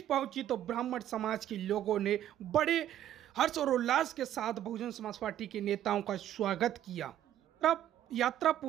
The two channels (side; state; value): left; quieter; 11.7 dB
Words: पहुंची तो ब्राह्मण समाज के लोगों ने बड़े हर्ष और उल्लास के साथ बहुजन समाज पार्टी के नेताओं का स्वागत किया। तब यात्रा